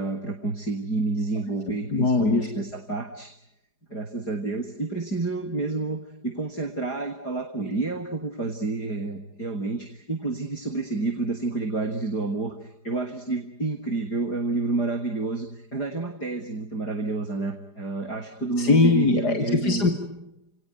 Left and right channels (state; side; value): late; right; 4.9 ms